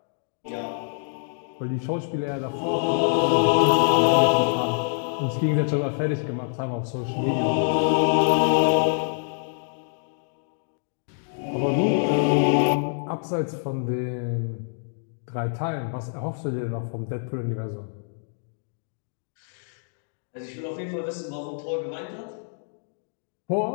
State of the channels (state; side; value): silent; right; digital silence